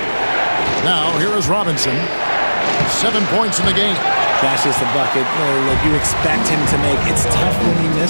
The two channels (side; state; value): both; inverted; correlation -1.00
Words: Now, here is Robinson. 7 points in the game. That's just a bucket that you expect him to make. It's tough when you